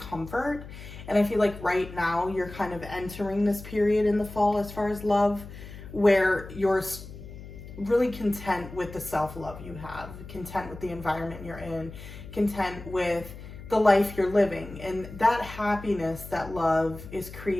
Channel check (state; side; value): noise; left; hum, 14 dB below the sound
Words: And I feel like right now you're kind of entering this period in the fall as far as love, where you're really content with the self-love you have, content with the environment you're in, content with the life you're living. And that happiness, that love is